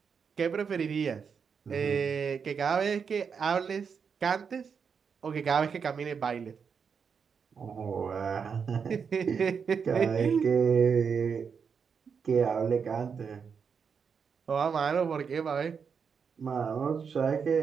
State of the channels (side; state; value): left; quieter; 6.3 dB